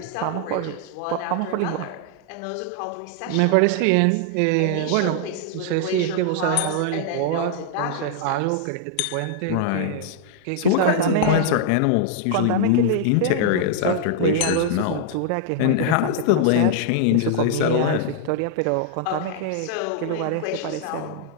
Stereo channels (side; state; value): both; different; correlation -0.01